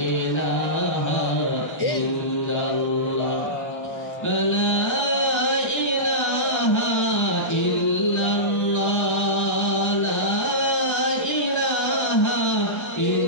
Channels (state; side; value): late; right; 1.3 ms